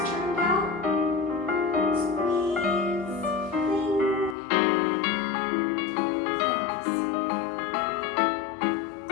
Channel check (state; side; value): drops out; right; at 4.4 s